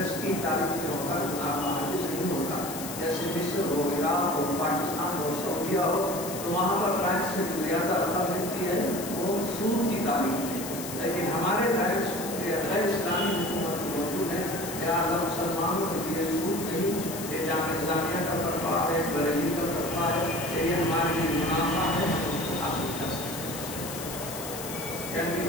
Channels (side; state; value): left; noise; hiss, 9 dB below the sound